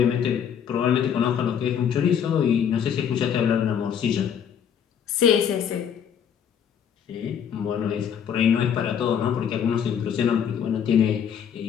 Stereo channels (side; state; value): right; quieter; 8.2 dB